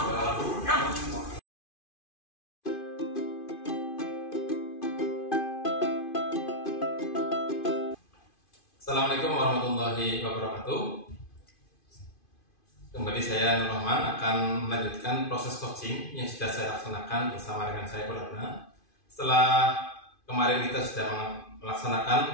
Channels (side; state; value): right; late; 2.5 ms